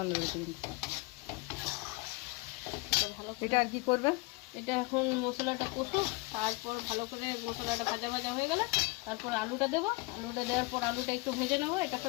বেরিয়েছে কিন্তু। এটা ভালো করে, এটা আর কি করবে? এটা এখন মশলাটা কষুক, তারপর ভালো করে মশলাটা ভাজা ভাজা হয়ে গেলে তারপর আলুটা দেবো। আলুটা দেওয়ার পর আলুটা একটু ভেজে নেবো এটার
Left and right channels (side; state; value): right; quieter; 25.4 dB